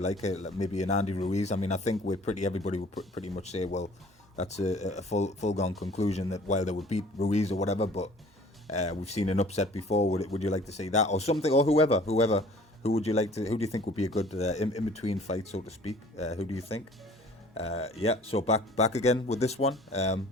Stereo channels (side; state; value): both; normal; correlation 0.51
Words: maybe an Andy Ruiz? I mean, I think everybody would pretty much say, well, that's a full gone conclusion that Wilder would beat Ruiz or whatever. But we've seen an upset before. Would you like to see that or something or whoever? Who would you like to? Who do you think would be a good in between fight, so to speak? Who do you think? Yeah. So back again with this one.